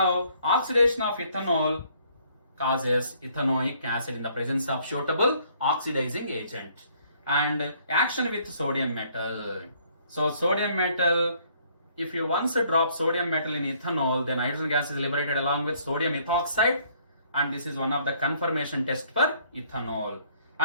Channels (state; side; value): inverted; both; correlation -0.63